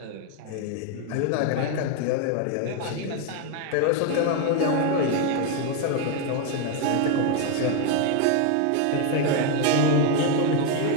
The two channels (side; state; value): both; different; correlation 0.01